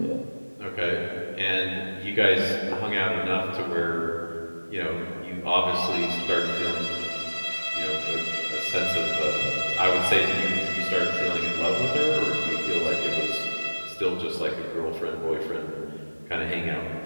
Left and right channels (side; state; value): both; inverted; correlation -1.00